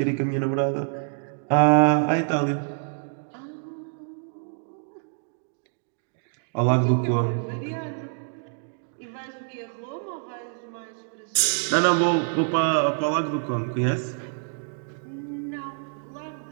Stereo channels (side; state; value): left; silent; digital silence